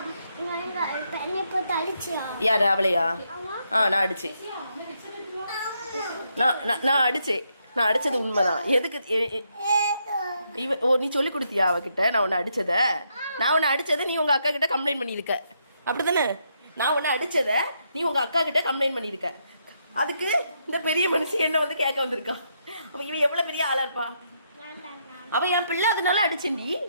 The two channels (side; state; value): both; inverted; correlation -0.77